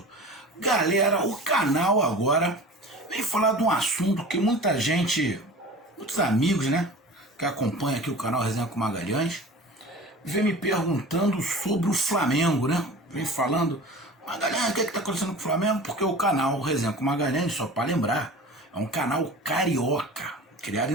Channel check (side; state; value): both; normal; correlation 0.38